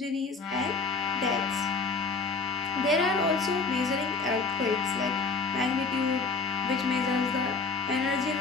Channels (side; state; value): right; quieter; 4.2 dB